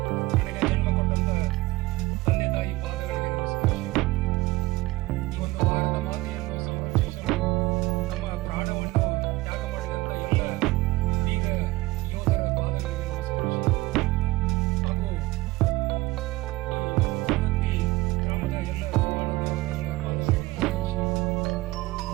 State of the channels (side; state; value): left; quieter; 20.4 dB